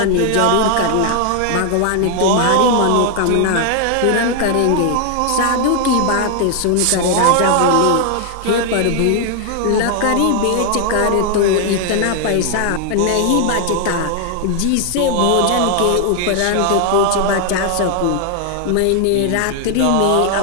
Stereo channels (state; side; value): different; both; correlation 0.00